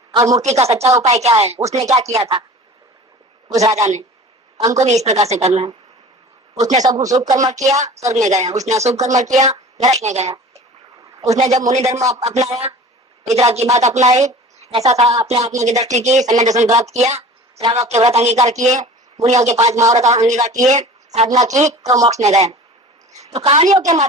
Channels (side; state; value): both; normal; correlation 0.41